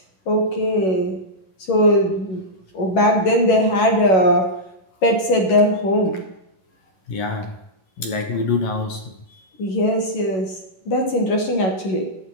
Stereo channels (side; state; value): right; late; 11 ms